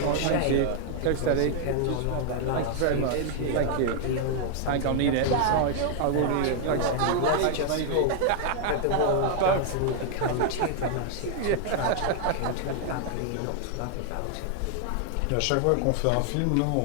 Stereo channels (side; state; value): both; different; correlation 0.00